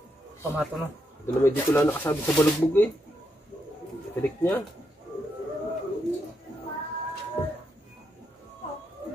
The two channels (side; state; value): both; normal; correlation 0.81